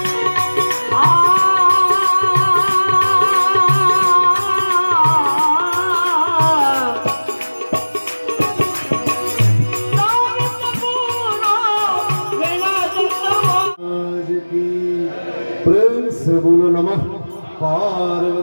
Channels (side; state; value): both; inverted; correlation -1.00